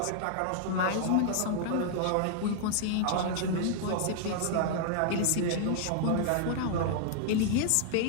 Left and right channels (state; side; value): different; both; correlation -0.01